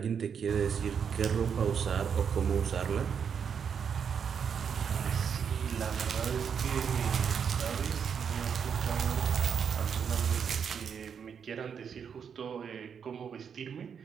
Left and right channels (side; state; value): left; quieter; 7.1 dB